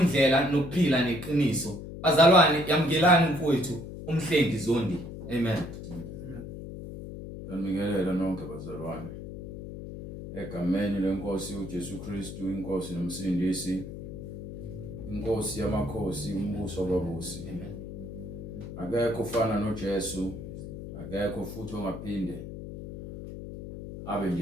nokuphila neqiniso. Bazalwane, yamukelani mfowethu umhlengi Zondi. Amen. Ngibingelela nonke bazalwane. Egameni lenkosi uJesu Kristu, inkosi nomsindisi, inkosi yamakhosi, umbuso wababusi. Amen. Akekho ufana noJesu, akekho futhi ongaphinde abe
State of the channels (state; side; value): noise; left; hum, 10 dB below the sound